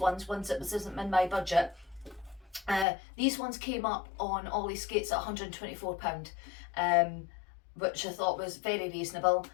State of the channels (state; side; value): drops out; right; at 2.9 s